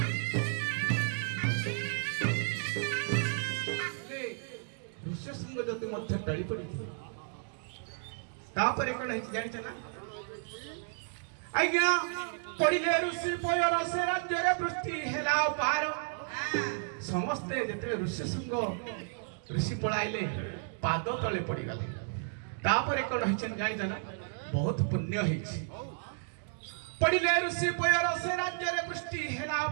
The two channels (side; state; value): left; silent; digital silence